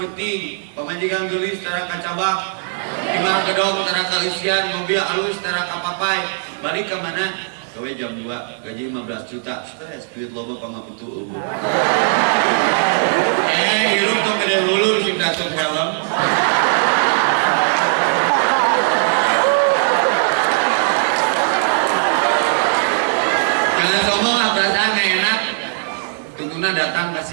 pamajikan geulis tara kacabak. Imah gedong tara kalisian, mobil alus tara kapapai. Balik ke mana? Gawe jam 2, gaji 15 juta. Stres, duit loba pangabutu eueuh. Hirup tong gede hulur sing datang helm. Jangan sombong lah, perasaan gak enak. Tungtuna datang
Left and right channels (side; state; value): left; silent; digital silence